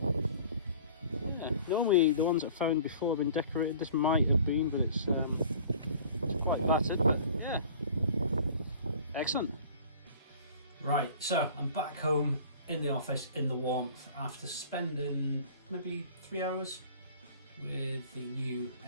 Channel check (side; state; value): both; inverted; correlation -0.47